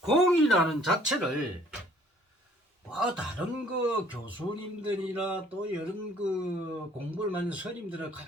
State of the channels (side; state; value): both; normal; correlation 0.59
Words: 공이라는 자체를 다른 그 교수님들이나 또 이런 그 공부를 많은 스님들을